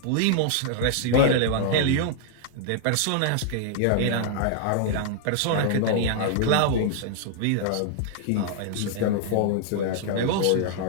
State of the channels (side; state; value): both; different; correlation -0.01